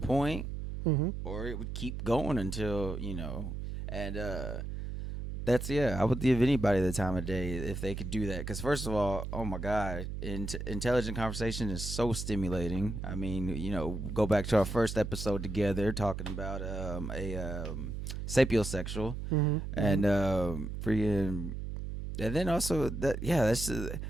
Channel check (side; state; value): right; noise; hum, 5 dB below the sound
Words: Mm-hmm. or it would keep going until, and that's, I would give anybody the time of day if they could do that. Because first of all, oh my God, intelligent conversation is so stimulating. I mean, go back to our first episode together talking about sapiosexual, Mm-hmm. and freaking, and then also that's